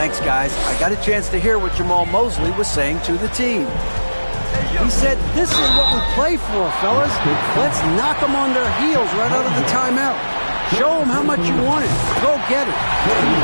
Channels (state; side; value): inverted; both; correlation -1.00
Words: guys. I got a chance to hear what Jamal Mosley was saying to the team. He said, this is what we play for, fellas. Let's knock them on their heels right out of the timeout. Show them how much you want it. Go get it.